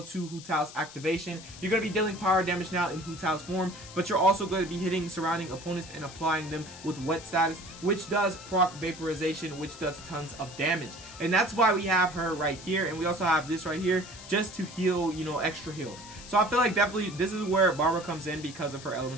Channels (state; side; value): noise; left; hiss, 16 dB below the sound